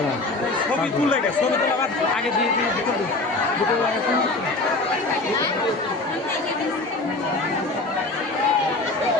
ছবি তুলে গেছে ছবি তোলা আগে দিয়ে দিয়ে দুটো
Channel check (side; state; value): right; quieter; 3.1 dB